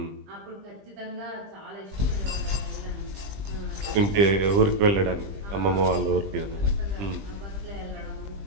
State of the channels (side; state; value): left; late; 20 ms